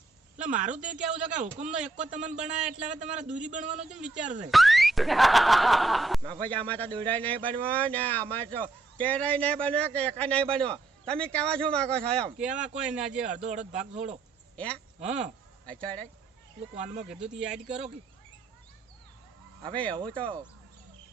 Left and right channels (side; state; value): left; quieter; 3.3 dB